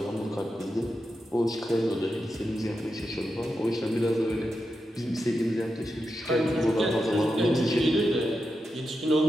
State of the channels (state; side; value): normal; both; correlation 0.88